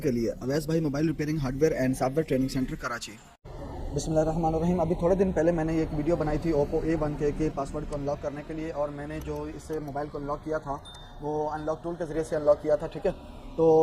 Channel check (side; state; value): both; identical; correlation 1.00